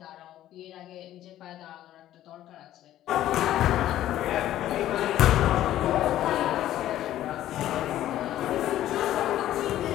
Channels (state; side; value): quieter; right; 13.0 dB